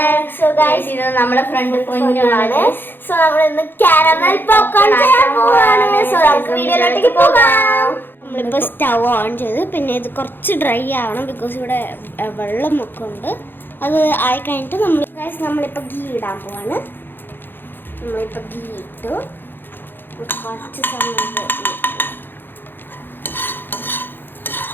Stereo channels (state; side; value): late; right; 0.098 ms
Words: So guys, ഇത് നമ്മുടെ front പൊന്നുമാണ്. So നമ്മൾ ഇന്ന് കാരമൽ പോപ്കോൺ ചെയ്യാൻ പോവാണ്. സോ നമുക്ക് വീഡിയോയിലേക്ക് പോകാം. നമ്മളിപ്പോൾ സ്റ്റവ് ഓൺ ചെയ്ത് പിന്നെ ഇത് കുറച്ച് ഡ്രൈ ആവണം ബിക്കോസ് ഇവിടെ വെള്ളമൊക്കെ ഉണ്ട്. അത് ആയി കഴിഞ്ഞിട്ട് നമ്മളിപ്പോൾ ഗീ ഇടാൻ പോവാണ്. നമ്മളിപ്പോൾ ഗീ ഇട്ടു കുറച്ച് സമയം